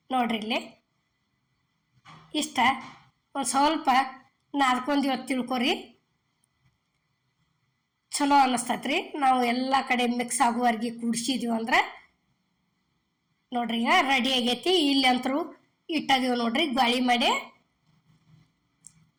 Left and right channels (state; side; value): identical; both; correlation 1.00